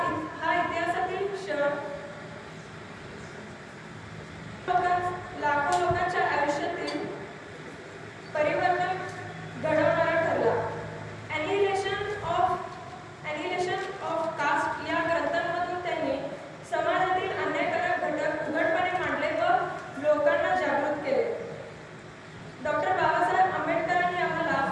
हा इतिहासातील क्षण लाखो लोकांच्या आयुष्यातील परिवर्तन घडवणारा ठरला। ॲनिहिलेशन ऑफ कास्ट या ग्रंथांमधून त्यांनी समाजातील अन्यायकारक घटक उघडपणे मांडले व लोकांना जागृत केले। डॉक्टर बाबासाहेब आंबेडकरांनी आम्हाला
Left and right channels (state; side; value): identical; both; correlation 1.00